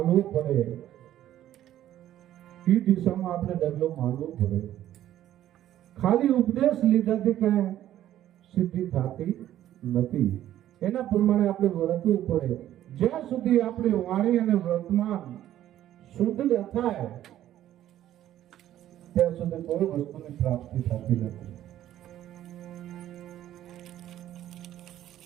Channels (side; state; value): left; quieter; 12.5 dB